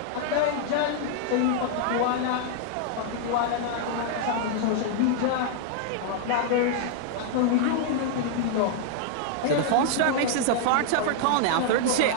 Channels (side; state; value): both; different; correlation 0.00